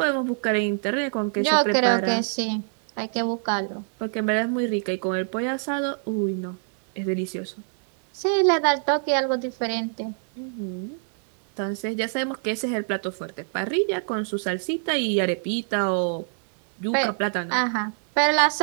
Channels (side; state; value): left; silent; 61 dB below the other